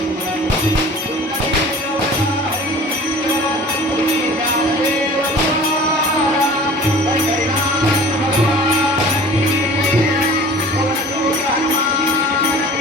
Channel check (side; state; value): both; normal; correlation 0.44